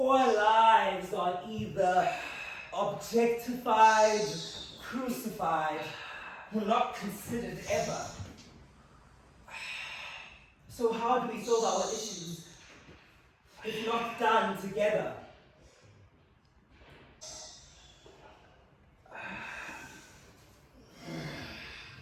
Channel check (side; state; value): both; identical; correlation 1.00